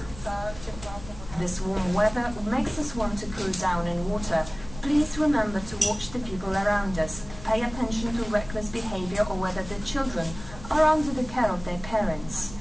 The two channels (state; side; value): noise; left; rumble, 14 dB below the sound